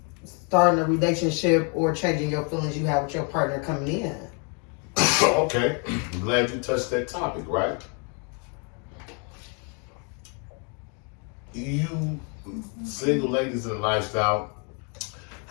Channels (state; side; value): quieter; right; 37.2 dB